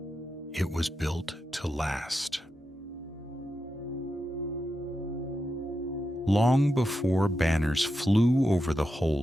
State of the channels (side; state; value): both; normal; correlation 0.88